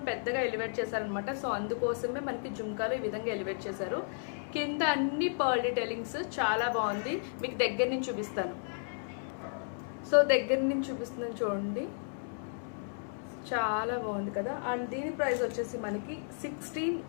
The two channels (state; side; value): silent; right; 56 dB below the other